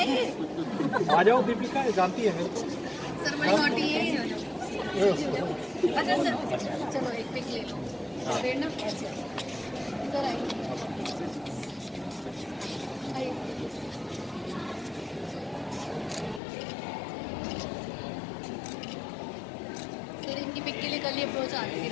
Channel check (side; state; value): right; drops out; at 16.4 s